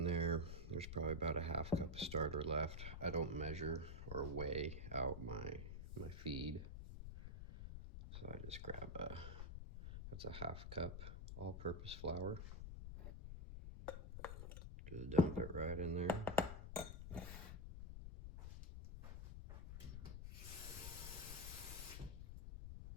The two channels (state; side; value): noise; left; rumble, 7 dB below the sound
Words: there, there's probably about a half cup of starter left. I don't measure or weigh out my feed, so I just grab that's a half cup all-purpose flour. Just dump it right in there.